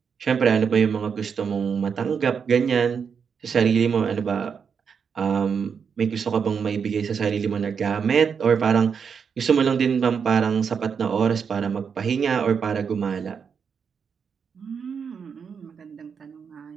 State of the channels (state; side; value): quieter; left; 6.5 dB